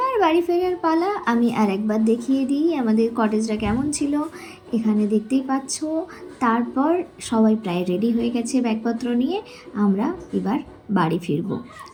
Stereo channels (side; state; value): both; identical; correlation 1.00